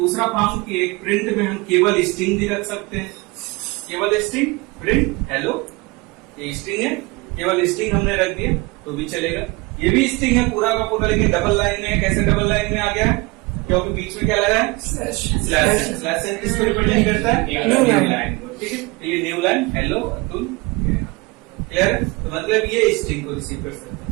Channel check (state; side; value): quieter; left; 25.0 dB